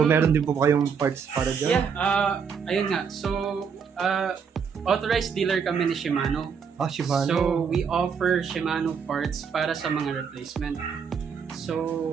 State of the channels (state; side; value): quieter; left; 6.5 dB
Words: meron din po kayong parts para dyan? Yeah, ayun nga. So, authorized dealer kami ni Shimano. Shimano. So, we offer Shimano parts para sa mga replacement.